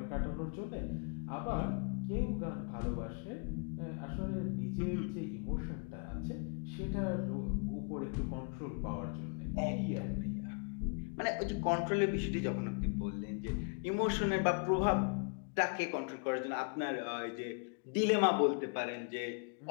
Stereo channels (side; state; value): right; quieter; 39.2 dB